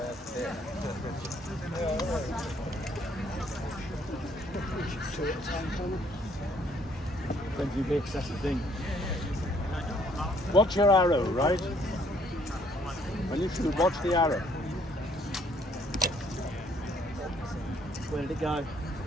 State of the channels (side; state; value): both; normal; correlation 0.65